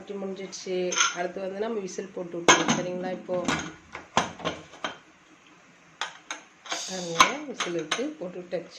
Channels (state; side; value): identical; both; correlation 1.00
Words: முடிஞ்சிடுச்சு. அடுத்து வந்து நம்ம விசில் போட்டு விட்டுருவோம், சரிங்களா? இப்போது விசில் விட்டு போட்டு